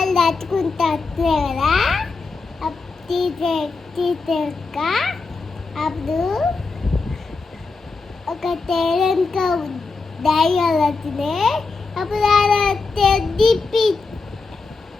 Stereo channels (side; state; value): right; quieter; 4.1 dB